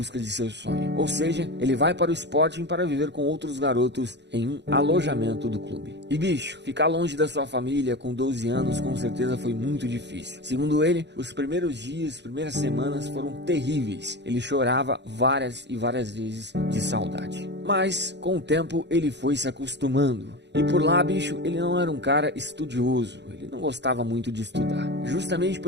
de seu sonho. Ou seja, ele vai para o Sporting para viver com outros garotos em um alojamento do clube. E bicho, ficar longe da sua família com 12 anos com certeza foi muito difícil. Segundo ele, os primeiros dias, primeiras semanas foram terríveis. Ele chorava várias e várias vezes de saudade. Mas, com o tempo, ele foi se acostumando. E por lá, bicho, ele não era um cara estudioso. Ele não gostava muito de estudar. Justamente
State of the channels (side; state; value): left; late; 0.51 ms